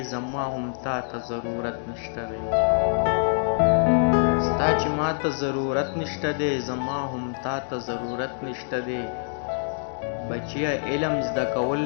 زما هم تا ته ضرورت نشته دی ستا چې ما ته ضرورت نشته دی زما هم تا ته ضرورت نشته دی بچیا علم زده کول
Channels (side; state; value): right; silent; digital silence